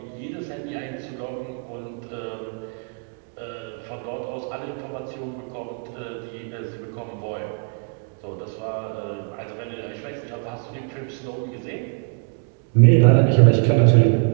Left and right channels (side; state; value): left; quieter; 39.1 dB